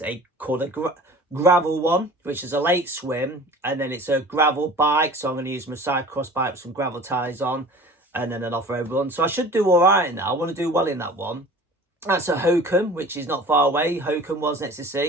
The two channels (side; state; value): both; normal; correlation 0.43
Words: called a gravel one, which is a late swim, and then it's a gravel bike. So I'm going to use my cyclocross bike with some gravel tyres on, and then an off-road run. So I should do all right in that. I want to do well in that one. That's a Hokum, which is not far away. Hokum was next to